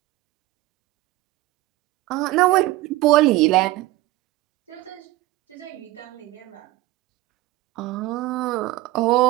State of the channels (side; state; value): left; quieter; 18.0 dB